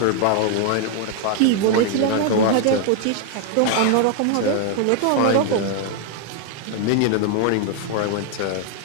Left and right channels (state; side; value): different; both; correlation 0.00